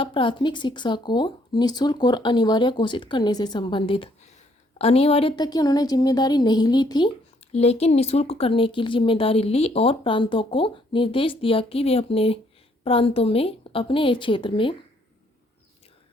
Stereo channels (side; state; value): both; normal; correlation 0.67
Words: प्राथमिक शिक्षा को निःशुल्क और अनिवार्य घोषित करने से संबंधित। अनिवार्यता की उन्होंने जिम्मेदारी नहीं ली थी, लेकिन निःशुल्क करने की जिम्मेदारी ली और प्रांतों को निर्देश दिया कि वे अपने प्रांतों में, अपने क्षेत्र में